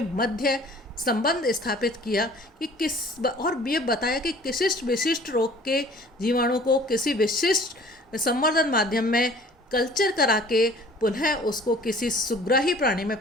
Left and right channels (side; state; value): both; normal; correlation 0.50